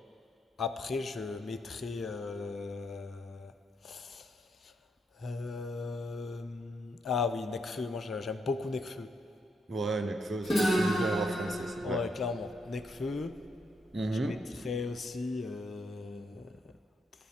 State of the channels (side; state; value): both; normal; correlation 0.78